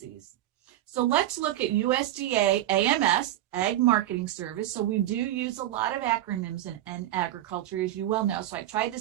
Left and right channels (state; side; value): quieter; left; 13.6 dB